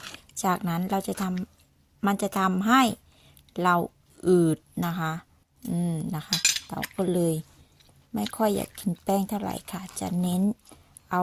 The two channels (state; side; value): identical; both; correlation 1.00